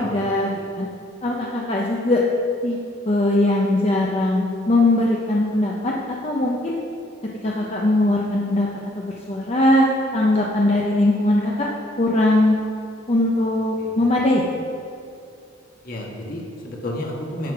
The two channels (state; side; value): normal; both; correlation 0.66